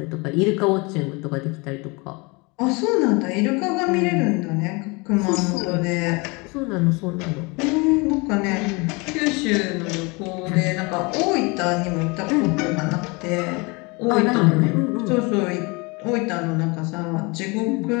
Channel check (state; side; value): quieter; right; 27.6 dB